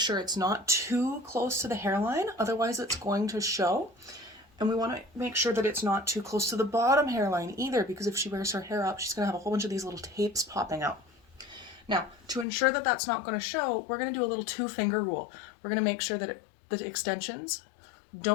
it's not too close to the hairline, otherwise it's going to show. And we want to make sure that it's not too close to the bottom hairline either, because if she wears her hair up, she's going to have a whole bunch of these little tapes popping out. Now, to ensure that that's not going to show, we're going to do a little two-finger rule. We're going to make sure that the extensions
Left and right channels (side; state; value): right; drops out; at 12.5 s